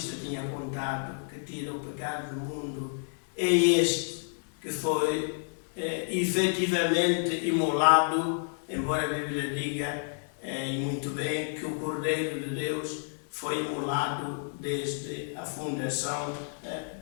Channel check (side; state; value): right; silent; digital silence